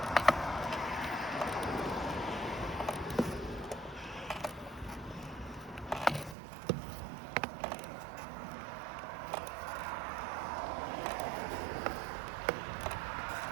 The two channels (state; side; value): drops out; left; at 6.4 s